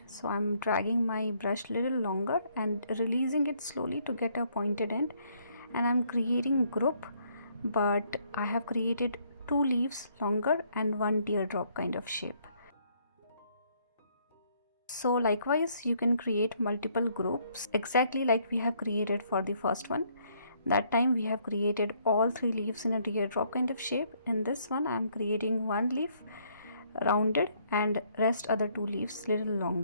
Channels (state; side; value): inverted; both; correlation -0.67